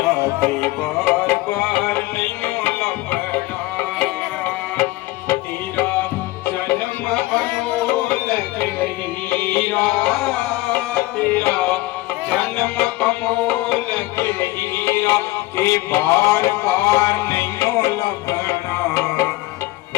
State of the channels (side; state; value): right; quieter; 19.2 dB